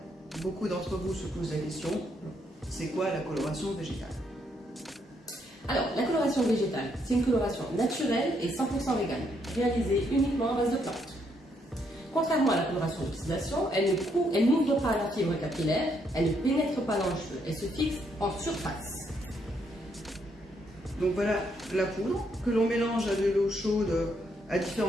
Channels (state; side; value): normal; both; correlation 0.74